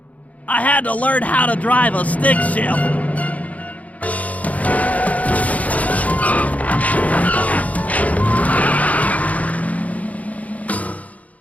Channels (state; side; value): late; right; 0.070 ms